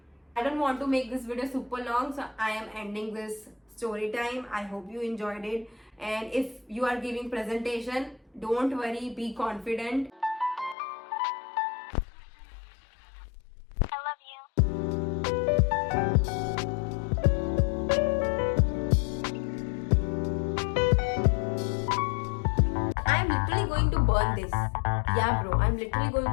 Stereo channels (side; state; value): right; drops out; at 10.8 s